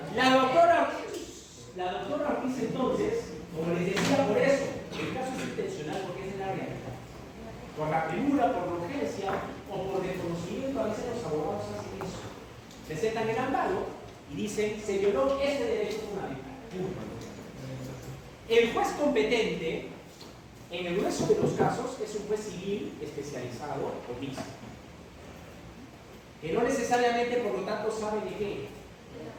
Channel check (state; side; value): identical; both; correlation 1.00